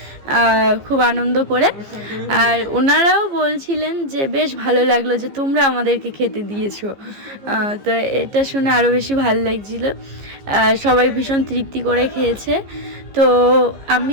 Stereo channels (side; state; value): left; late; 15 ms